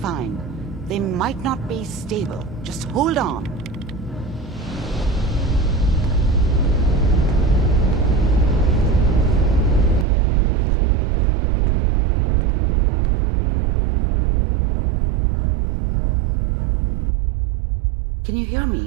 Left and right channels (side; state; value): left; drops out; at 10.1 s